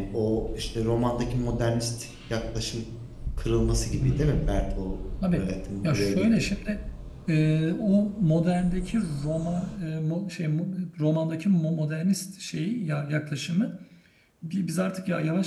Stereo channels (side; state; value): both; identical; correlation 1.00